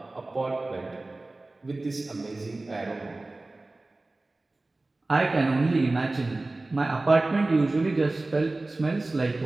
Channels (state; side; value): quieter; left; 3.0 dB